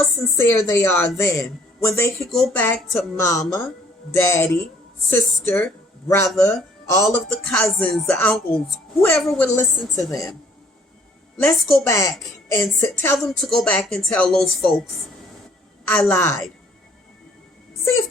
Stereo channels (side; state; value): both; normal; correlation 0.61